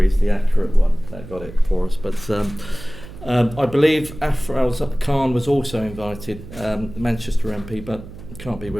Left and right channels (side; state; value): right; noise; hum, 15 dB below the sound